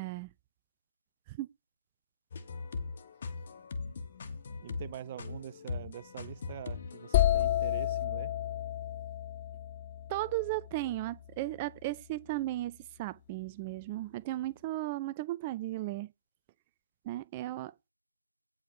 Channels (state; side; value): inverted; both; correlation -0.37